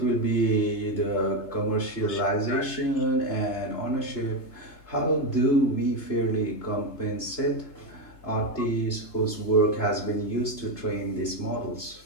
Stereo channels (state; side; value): late; right; 3.3 ms